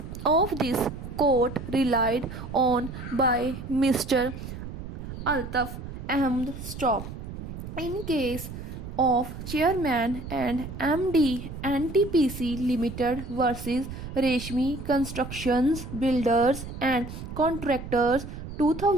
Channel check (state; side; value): noise; right; rumble, 9 dB below the sound